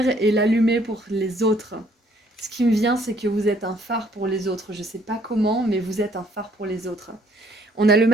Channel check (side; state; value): both; normal; correlation 0.64